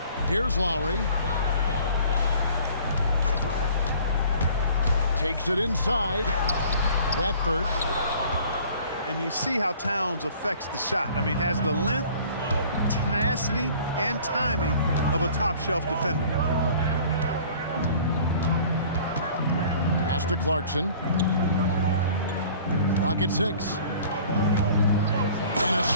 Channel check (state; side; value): inverted; both; correlation -0.50